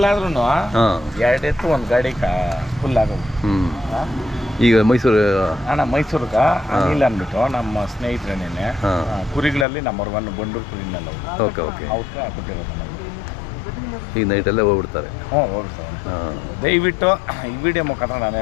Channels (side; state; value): right; drops out; at 9.7 s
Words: ಎರಡು ಎತ್ತು ಒಂದು ಗಾಡಿ ಫುಲ್ ಆಗೋದು. ಈಗ ಮೈಸೂರು ಅಣ್ಣ ಮೈಸೂರಿಗೆ ಅನಿಲ್ ಅಂದ್ಬಿಟ್ಟು ನಮ್ಮ ಸ್ನೇಹಿತರೇನೇನೆ ಕುರಿಗಳಲ್ಲಿ ನಂಬರ್ 1 ಬಂಡೂರು ಕುರಿನೆಲ್ಲ ಓಕೆ ಓಕೆ ಅವ್ರಿಗೆ ಕೊಟ್ಟಿರೋದು ನಮಗೆ. ಈಗ ನೈಟಲ್ಲೇ ಹೋಗ್ಬಿಡ್ತಾರೆ. ಹೋಗ್ಬಿಡ್ತಾರೆ. ದಯವಿಟ್ಟು ಈ ವಿಡಿಯೋ ಮುಖಾಂತರ ನಾನು